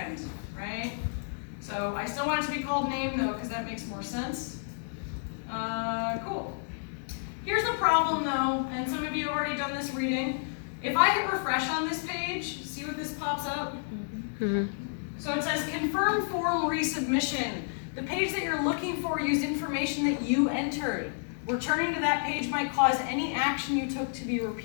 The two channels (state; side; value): silent; right; digital silence